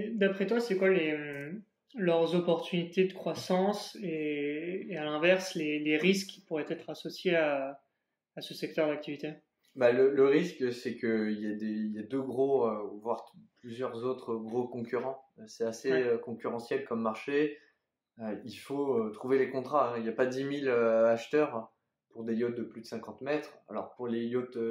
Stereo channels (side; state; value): both; identical; correlation 1.00